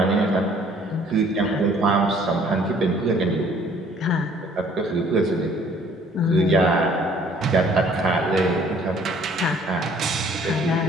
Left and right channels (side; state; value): both; normal; correlation 0.58